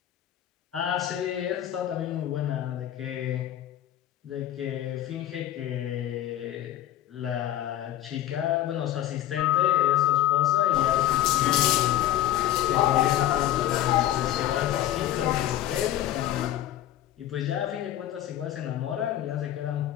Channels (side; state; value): right; quieter; 12.5 dB